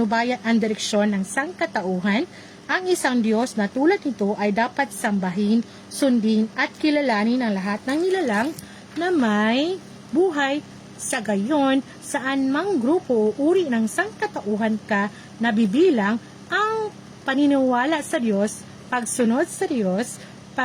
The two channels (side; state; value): both; identical; correlation 1.00